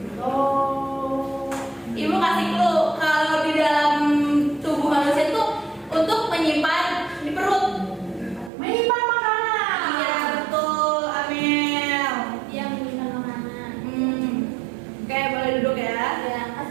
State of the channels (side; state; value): left; drops out; at 8.5 s